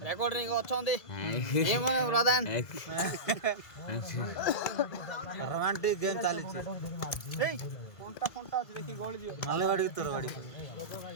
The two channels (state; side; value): late; right; 2.0 ms